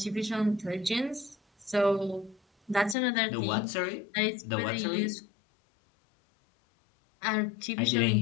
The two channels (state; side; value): drops out; right; at 3.0 s